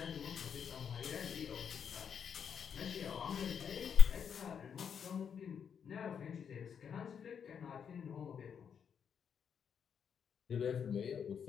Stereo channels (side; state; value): right; quieter; 7.4 dB